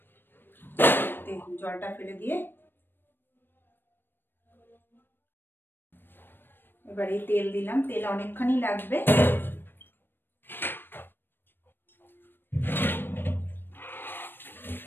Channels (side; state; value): right; late; 0.097 ms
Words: জলটা ফেলে দিয়ে এবার এই তেল দিলাম, তেল অনেকখানি লাগবে।